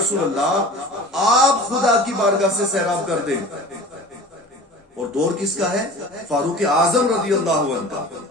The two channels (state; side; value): normal; both; correlation 0.40